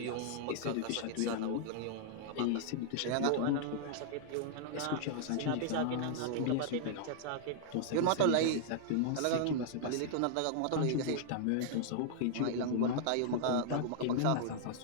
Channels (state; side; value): different; both; correlation -0.01